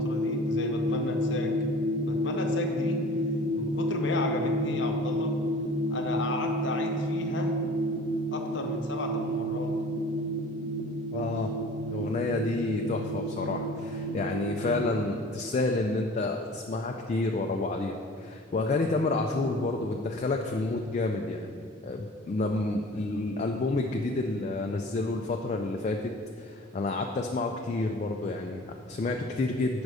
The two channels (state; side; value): normal; both; correlation 0.44